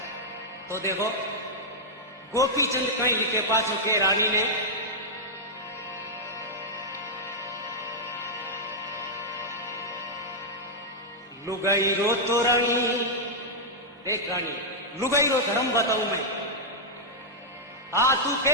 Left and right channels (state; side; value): normal; both; correlation -0.05